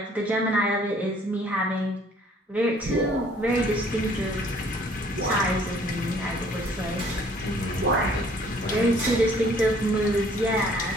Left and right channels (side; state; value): both; normal; correlation 0.58